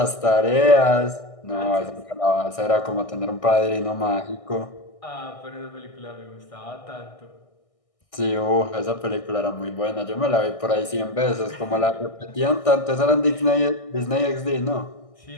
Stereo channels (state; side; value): late; right; 1.6 ms